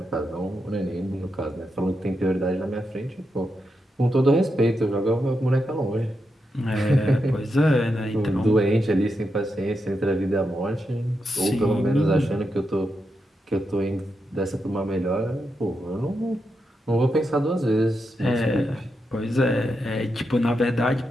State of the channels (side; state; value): both; normal; correlation 0.85